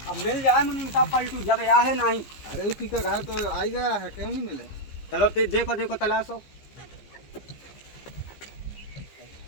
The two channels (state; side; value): late; right; 15 ms